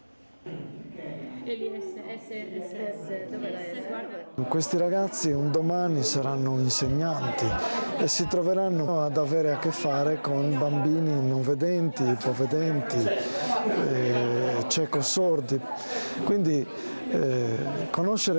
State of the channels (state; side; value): inverted; both; correlation -1.00